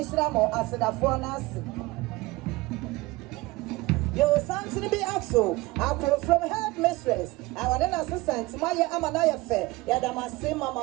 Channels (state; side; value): quieter; left; 20.8 dB